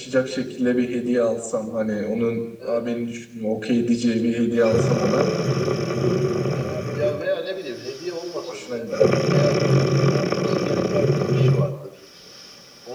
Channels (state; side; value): identical; both; correlation 1.00